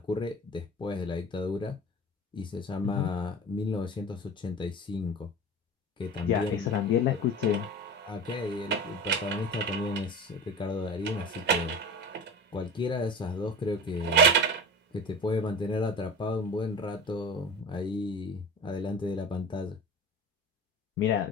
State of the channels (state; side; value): normal; both; correlation 0.32